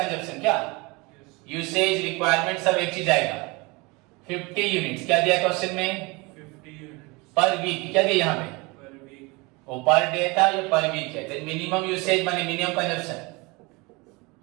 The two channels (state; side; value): quieter; left; 26.0 dB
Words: क्या यूसेज रिक्वायरमेंट सब एक चीज आएगा। 50 यूनिट्स क्या दिया क्वेश्चन में, 50 यूनिट्स पर वीक। क्या दिया यहाँ पे, पर वीक। वो पर डे था, ये पर वीक है। तो मिनिमम यूसेज माने मिनिमम कंजप्शन